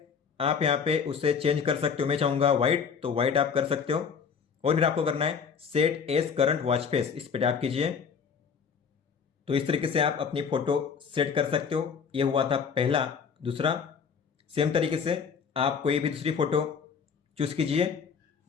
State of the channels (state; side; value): quieter; right; 6.4 dB